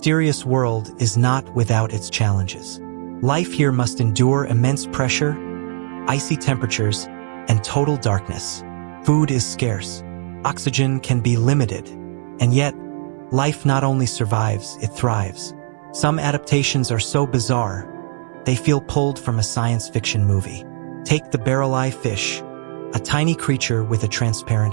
world is not without its challenges. Life here must endure immense pressure, icy temperatures, and total darkness. Food is scarce. Oxygen can be limited. And yet, life not only survives, it thrives. Some adaptations are so bizarre, they feel pulled from a science fiction movie. Take the barrel-eye fish, a tiny creature with a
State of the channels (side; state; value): left; silent; 66 dB below the other